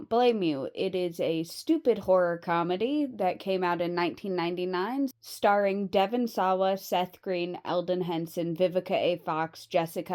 blame you. It is a stupid horror comedy that came out in 1999, starring Devon Sawa, Seth Green, Eldon Henson, Vivica A. Fox,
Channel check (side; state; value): both; identical; correlation 1.00